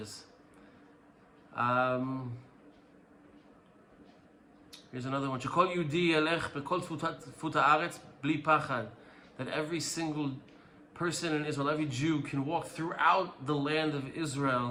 Here's another one. שכל יהודי ילך בכל תפות הארץ בלי פחד. That every single person in Israel, every Jew, can walk throughout the land of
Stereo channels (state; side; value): identical; both; correlation 1.00